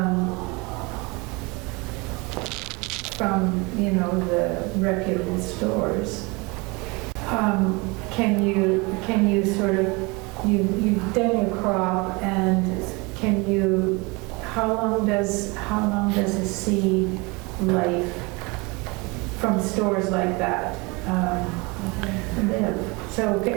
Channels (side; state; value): left; quieter; 26.9 dB